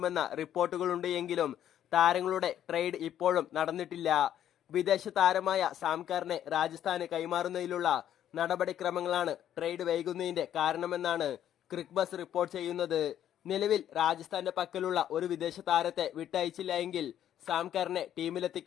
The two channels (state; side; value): quieter; right; 10.7 dB